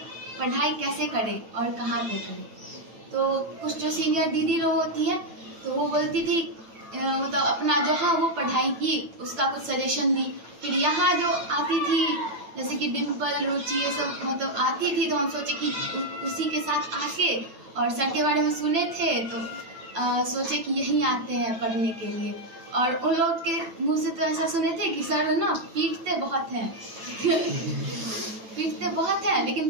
पढ़ाई कैसे करें और कहाँ पे करें। तो कुछ जो सीनियर दीदी लोग होती हैं तो वो बोलती थी मतलब अपना जहाँ वो पढ़ाई की उसका कुछ सजेशन दी। फिर यहाँ जो आती थी जैसे कि डिम्पल, रुचि, ये सब मतलब आती थी तो हम सोचे कि उसी के साथ आके और सर के बारे में सुने थे तो सोचे कि यहीं आते हैं पढ़ने के लिए। और उन लोग के मुंह से तो ऐसा सुने थे कि सर ना पीटते बहुत हैं पीटते बहुत हैं, लेकिन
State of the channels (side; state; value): left; late; 9.1 ms